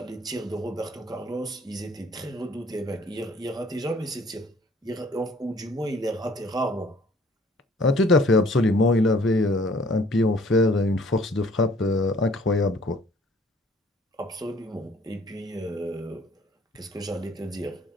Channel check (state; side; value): normal; both; correlation 0.57